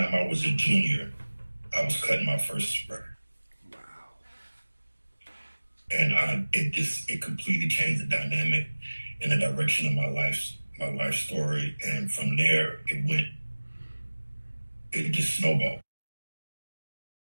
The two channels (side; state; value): both; inverted; correlation -1.00